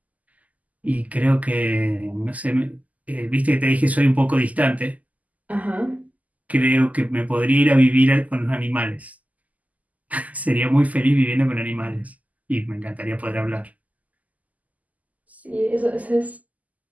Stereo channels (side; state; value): left; late; 0.076 ms